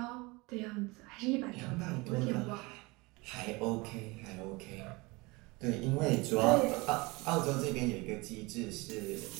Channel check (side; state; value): left; quieter; 24.7 dB